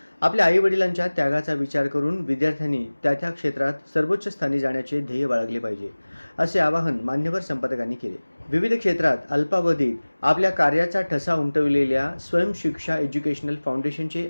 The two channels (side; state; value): both; inverted; correlation -1.00